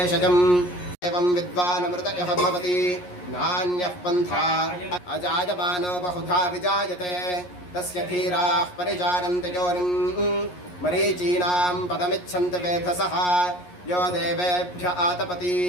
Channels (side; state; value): right; late; 11 ms